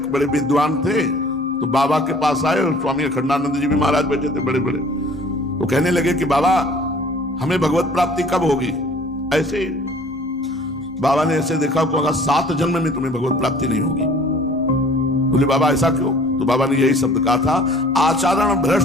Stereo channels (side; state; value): both; normal; correlation 0.51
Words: बड़े विद्वान थे तो बाबा के पास आए और स्वामी अखंडानंद जी भी महाराज बैठे थे बड़े बड़े। तो कहने लगे कि बाबा हमें भगवत प्राप्ति कब होगी? ऐसे ही बाबा ने ऐसे देखा को 7 जन्म में तुम्हें भगवत प्राप्ति नहीं होगी। बोले बाबा ऐसा क्यों? तो बाबा ने यही शब्द कहा था, आचरण